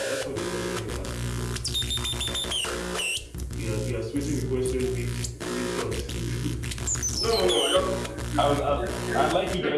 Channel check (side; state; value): both; identical; correlation 1.00